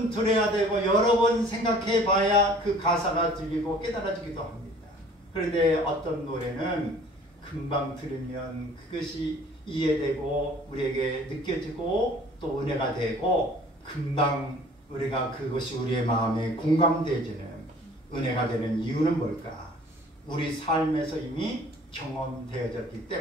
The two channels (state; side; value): normal; both; correlation 0.51